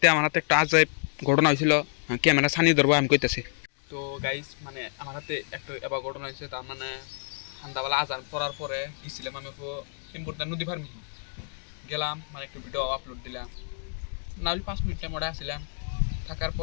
আমার হাতে একটা আজাইব ঘটনা হয়েছিল, ক্যামেরা ছানি ধরবো আমি কইতেছি। তো গাইস মানে আমার হাতে একটা এবার ঘটনা হয়েছে। তার মানে সন্ধ্যাবেলা আজান পড়ার পরে গেছিলাম আমি ইম্পর্টেন্ট নদী ফার্মি গেলাম, মানে একটু ভিডিও আপলোড দিলাম। না হলে 5 মিনিট টাইম ওটা আসছিলাম। থাকার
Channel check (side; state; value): right; silent; digital silence